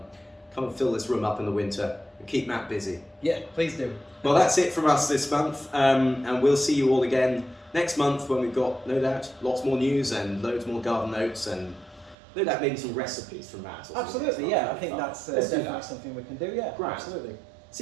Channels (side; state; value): left; drops out; at 12.2 s